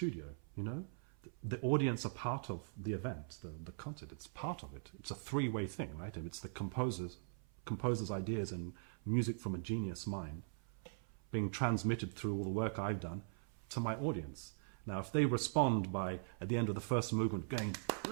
The audience are part of the event, the concert. It's part of it. It's a three-way thing, right? And it's the composer's ideas and music from a genius mind being transmitted through all the work I've done to my audience. Now, if they respond by at the end of the first movement going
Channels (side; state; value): left; silent; 50 dB below the other